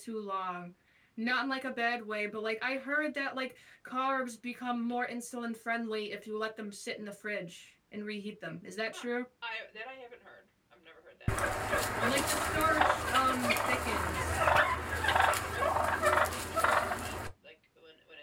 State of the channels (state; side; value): identical; both; correlation 1.00